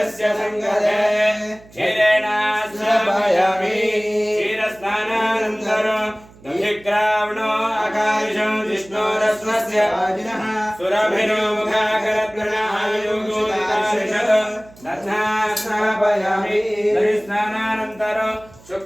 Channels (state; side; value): noise; right; hum, 24 dB below the sound